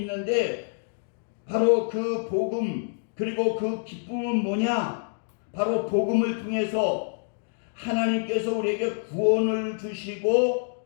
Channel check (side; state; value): right; silent; digital silence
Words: 바로 그 복음, 그리고 그 기쁨은 뭐냐? 바로 복음을 통해서 하나님께서 우리에게 구원을 주시고